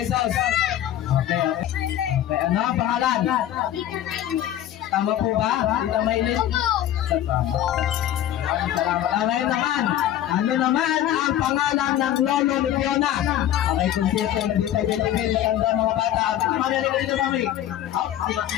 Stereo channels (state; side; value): quieter; right; 11.9 dB